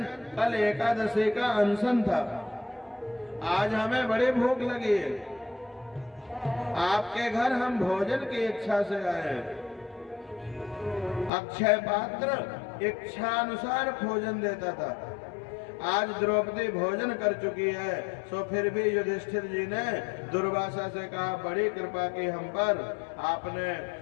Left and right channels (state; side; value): drops out; right; at 11.3 s